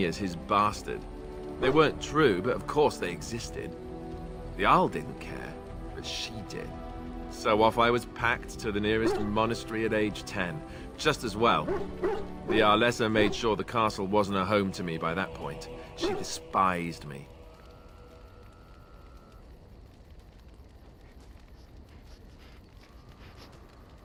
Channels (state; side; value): identical; both; correlation 1.00